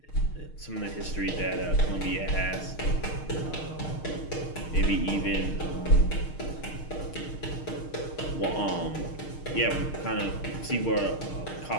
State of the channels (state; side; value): late; right; 6.5 ms